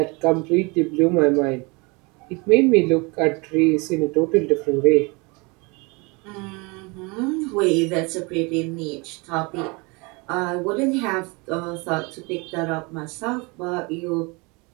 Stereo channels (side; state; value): left; quieter; 28.2 dB